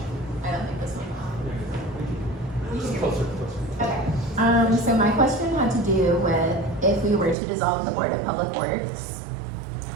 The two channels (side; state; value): left; drops out; at 7.4 s